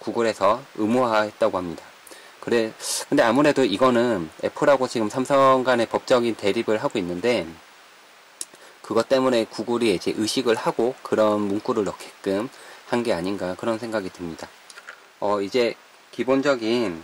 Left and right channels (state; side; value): identical; both; correlation 1.00